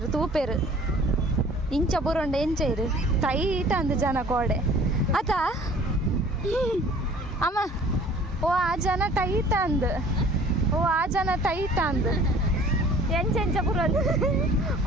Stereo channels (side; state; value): both; normal; correlation 0.50